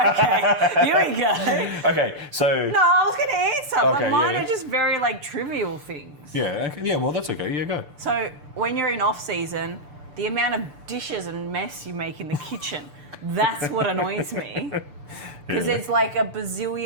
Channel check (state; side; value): late; left; 6.8 ms